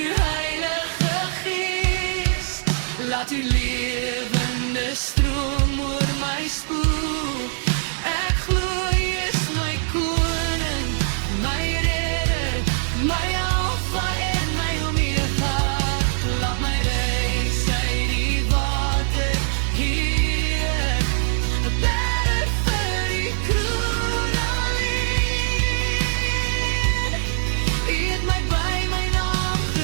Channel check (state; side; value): silent; left; 63 dB below the other